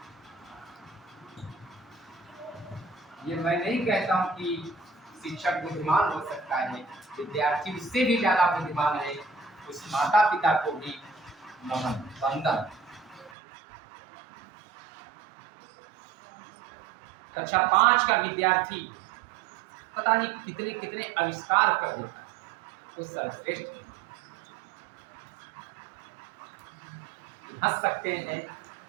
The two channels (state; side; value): drops out; left; at 13.3 s